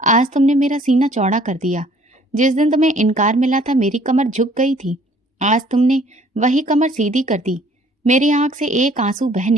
तुमने मेरा सीना चौड़ा कर दिया। जिस दिन तुम्हें इनकार मिला था मेरी कमर झुक गई थी, आज तुमने वही कमर सीधी कर दी। मेरी आंख से एक आंसू बह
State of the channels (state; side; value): normal; both; correlation 0.57